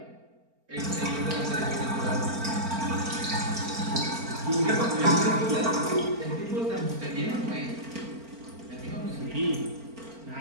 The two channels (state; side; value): late; left; 4.4 ms